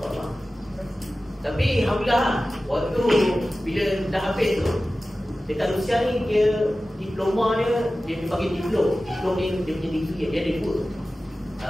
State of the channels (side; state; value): both; normal; correlation 0.96